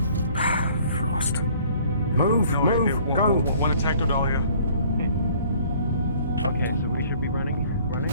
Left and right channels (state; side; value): inverted; both; correlation -0.56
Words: Frost. Move, go. One attack to Dahlia. Okay, so we should be running.